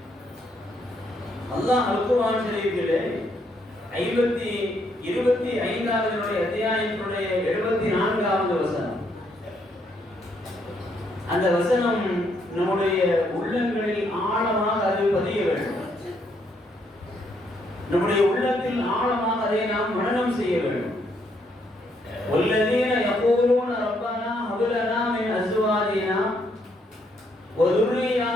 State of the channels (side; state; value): both; normal; correlation 0.73